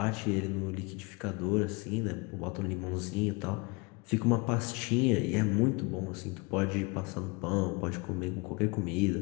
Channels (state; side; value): quieter; right; 28.7 dB